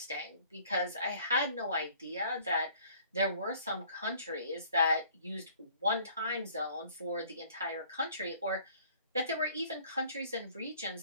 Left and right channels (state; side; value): inverted; both; correlation -0.56